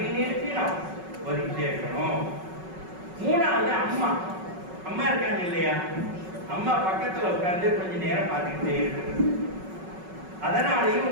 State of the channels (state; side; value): late; left; 5.4 ms